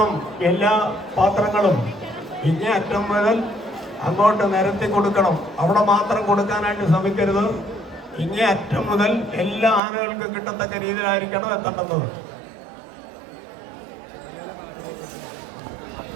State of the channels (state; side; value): drops out; left; at 9.8 s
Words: എല്ലാ പാത്രങ്ങളും. ഇങ്ങേ അറ്റം മുതൽ അങ്ങോട്ട് നിരത്തി കൊടുക്കണം. അവിടെ മാത്രം കൊടുക്കാനായിട്ട് ശ്രമിക്കരുത്. ഇങ്ങേ അറ്റം മുതൽ എല്ലാ ആനകൾക്കും കിട്ടത്തക്ക രീതിയിലായിരിക്കണം എത്തേണ്ടത്.